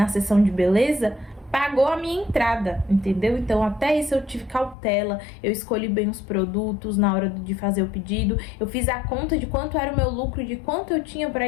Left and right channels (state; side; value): drops out; right; at 4.8 s